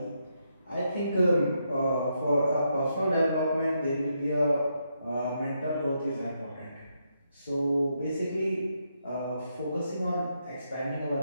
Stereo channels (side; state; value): both; inverted; correlation -0.80